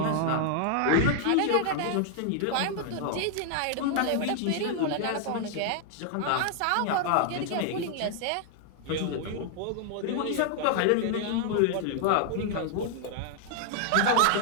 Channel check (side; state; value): both; different; correlation 0.00